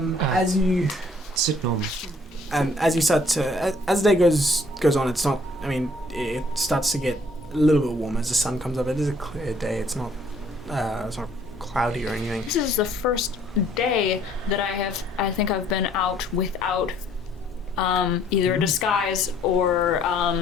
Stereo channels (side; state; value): both; normal; correlation 0.61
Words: you Sit normal. as you start to as the day goes on, it's not. I mean, it starts to get a little bit warmer as the sun comes up. It is a clear day. It's not cloudy or anything. This is the first day that I think I've been out without either a disguise or